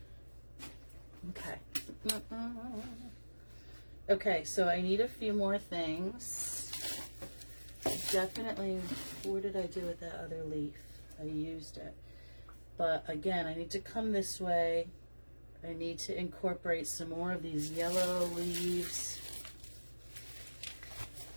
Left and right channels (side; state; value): both; inverted; correlation -1.00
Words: Okay. Okay, so I need a few more things. Definitely, what did I do with that other leaf? I used it. But again, I need to come this way. I need to incorporate some more of these yellow leaves.